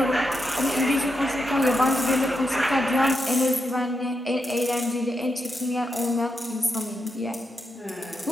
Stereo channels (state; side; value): normal; both; correlation 0.84